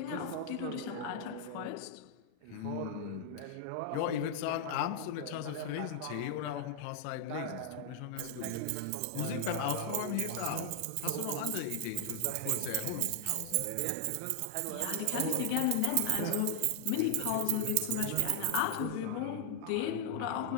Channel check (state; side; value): different; both; correlation 0.00